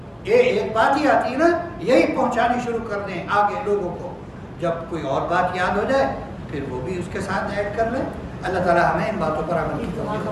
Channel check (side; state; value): both; identical; correlation 1.00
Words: یہ ایک بات ہی آتی ہے نا، یہی پہنچانی شروع کر دیں آگے لوگوں کو، جب کوئی اور بات یاد ہو جائے پھر وہ بھی اس کے ساتھ ایڈ کر لیں۔ اللہ تعالی ہمیں ان باتوں پر عمل کی توفیق عطا